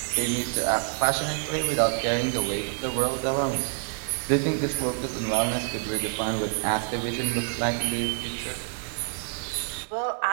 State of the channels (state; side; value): silent; left; 60 dB below the other